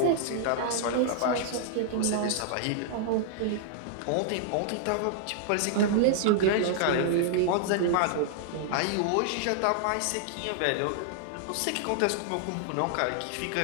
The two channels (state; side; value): different; both; correlation -0.01